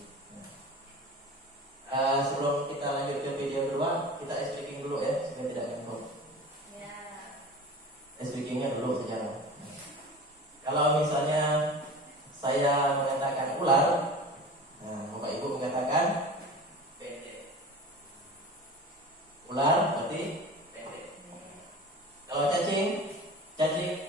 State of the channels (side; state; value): both; normal; correlation 0.36